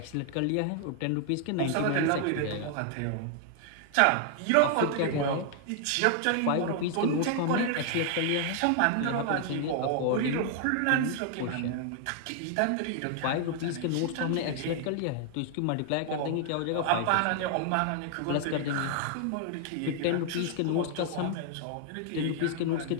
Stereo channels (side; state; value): both; different; correlation 0.00